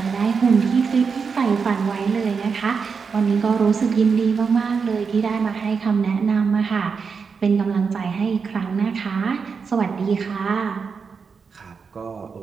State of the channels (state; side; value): quieter; left; 5.5 dB